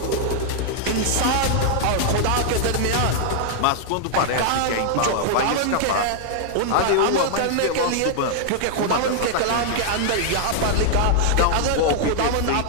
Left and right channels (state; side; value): different; both; correlation -0.01